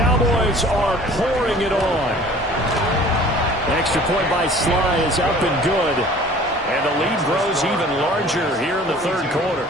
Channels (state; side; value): normal; both; correlation 0.48